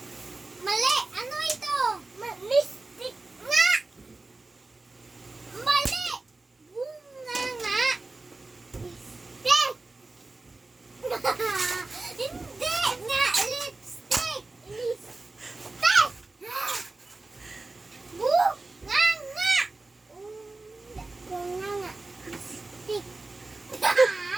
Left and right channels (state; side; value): quieter; left; 3.3 dB